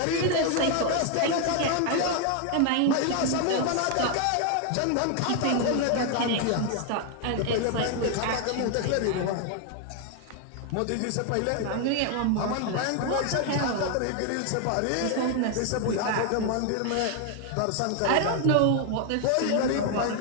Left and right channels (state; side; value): different; both; correlation 0.00